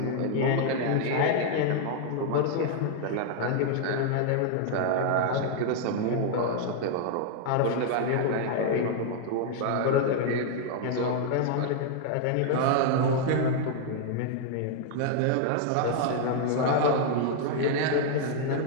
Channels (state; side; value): different; both; correlation 0.00